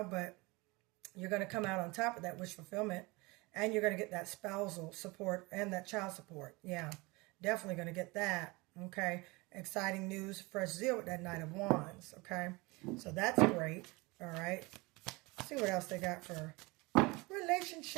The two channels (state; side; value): quieter; left; 24.6 dB